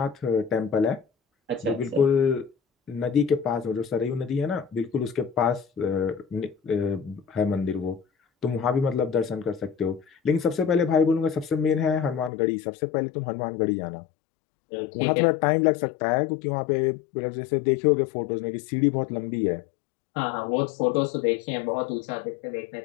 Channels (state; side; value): drops out; right; at 12.3 s